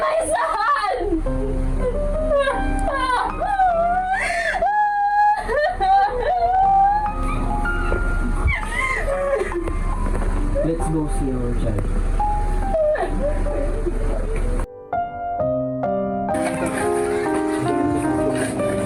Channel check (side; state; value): both; identical; correlation 1.00